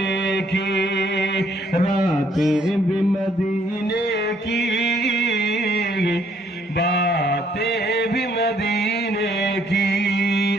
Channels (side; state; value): both; normal; correlation 0.66